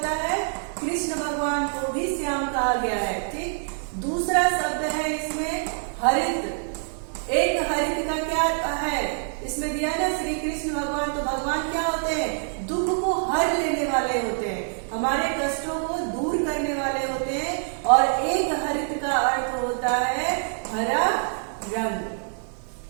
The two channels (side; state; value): left; silent; digital silence